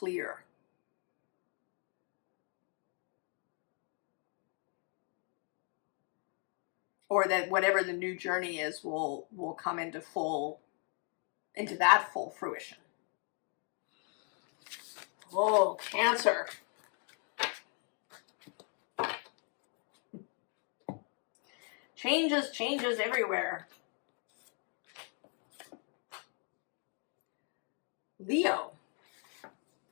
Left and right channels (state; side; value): quieter; right; 39.9 dB